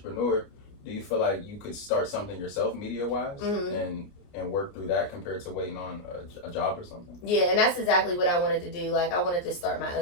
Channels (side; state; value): right; late; 29 ms